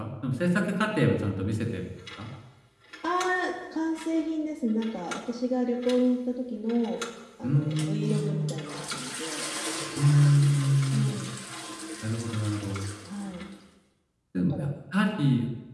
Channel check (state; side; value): identical; both; correlation 1.00